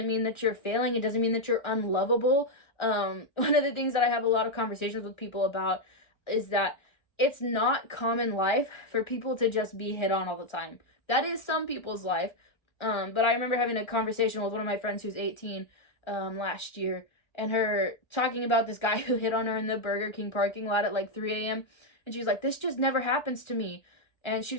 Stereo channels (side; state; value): right; late; 1.3 ms